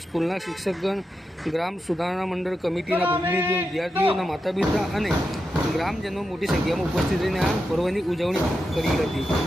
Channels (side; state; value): both; normal; correlation 0.88